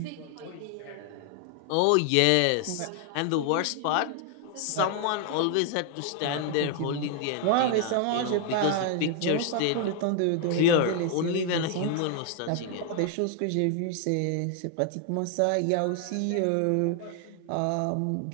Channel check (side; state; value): both; different; correlation 0.00